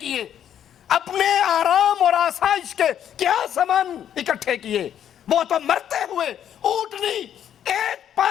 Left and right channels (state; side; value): quieter; right; 9.8 dB